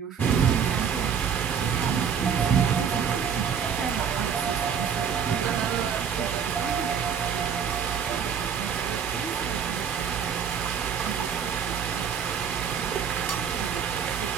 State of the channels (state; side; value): quieter; left; 7.4 dB